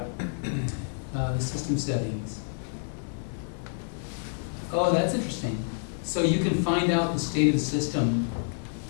The system settings. Oh, that's interesting. So you can find out the state of the system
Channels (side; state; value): right; silent; 59 dB below the other